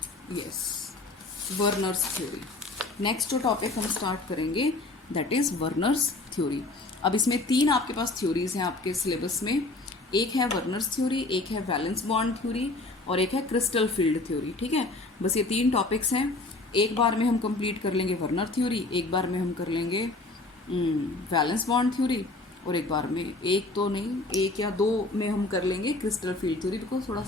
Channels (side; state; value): right; quieter; 3.1 dB